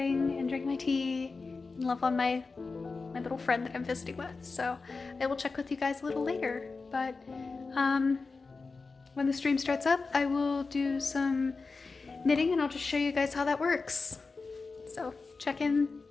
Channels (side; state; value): right; quieter; 4.2 dB